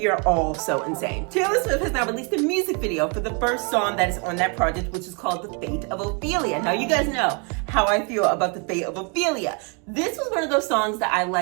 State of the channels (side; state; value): left; quieter; 34.9 dB